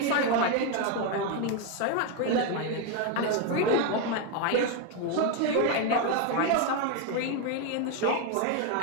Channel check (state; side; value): different; both; correlation 0.02